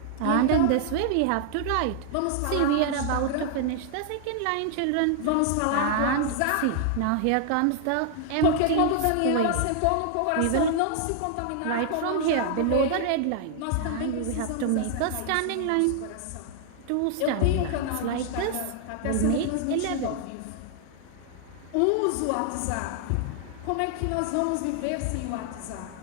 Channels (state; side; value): different; both; correlation 0.00